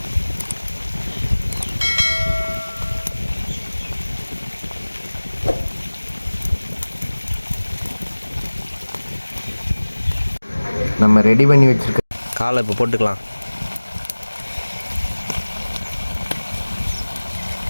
நம்ம ரெடி பண்ணி வச்சுருக்க காலை இப்போ போட்டுக்கலாம்.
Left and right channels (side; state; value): both; inverted; correlation -1.00